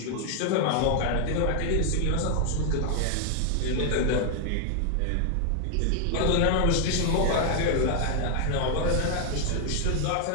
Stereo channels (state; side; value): different; both; correlation 0.00